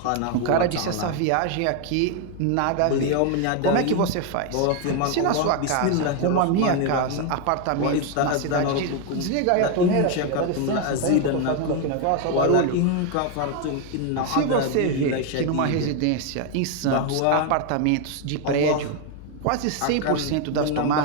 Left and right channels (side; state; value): both; different; correlation 0.01